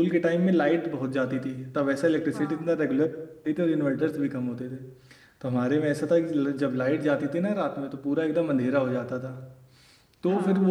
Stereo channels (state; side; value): identical; both; correlation 1.00